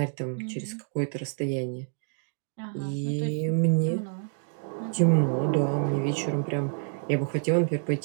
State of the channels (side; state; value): left; silent; 59 dB below the other